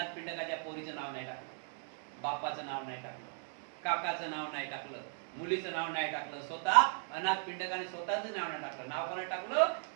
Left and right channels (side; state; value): left; silent; 53 dB below the other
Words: पिंडकाच्या पोरीचं नाव नाही टाकलं, बापाचं नाव नाही टाकलं, काकाचं नाव नाही टाकलं, मुलीचं नाव नाही टाकलं. स्वतः अनाथ पिंडकाने स्वतःचं नाव नाही टाकलं. नाव कोणाला टाकलं?